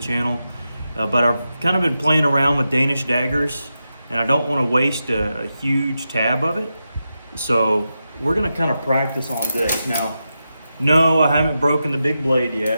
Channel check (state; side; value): inverted; both; correlation -0.89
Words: But I've kind of been playing around with Danish daggers, and I don't want to waste a huge tab of it. So we're going to kind of practice on this. Now, no, I haven't broken the big blade